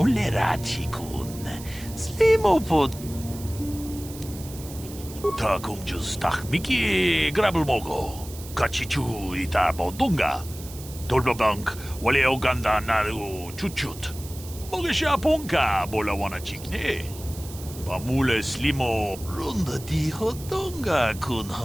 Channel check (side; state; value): right; noise; hiss, 15 dB below the sound